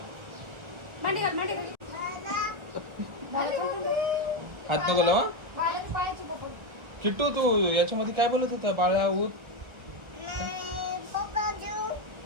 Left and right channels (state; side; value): late; left; 1.3 ms